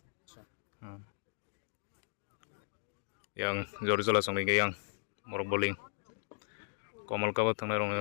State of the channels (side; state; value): right; silent; digital silence